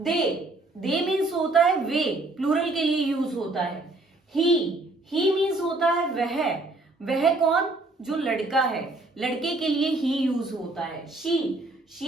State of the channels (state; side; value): quieter; left; 3.0 dB